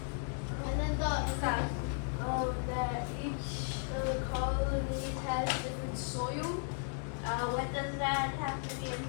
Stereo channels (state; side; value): silent; right; 54 dB below the other